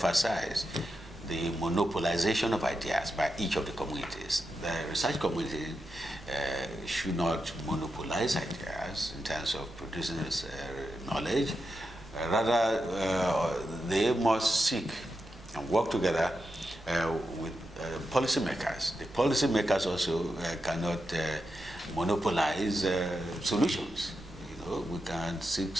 the monopolization of ideas by each of the communities. The research community should not monopolize ideas in terms of producing knowledge. Rather, they must seek and work together with policymakers. The policymakers also cannot monopolize solutions. We can seek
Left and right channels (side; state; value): right; noise; rumble, 19 dB below the sound